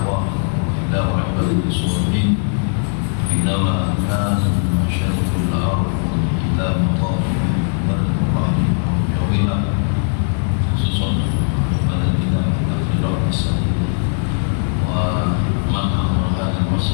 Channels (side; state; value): right; silent; digital silence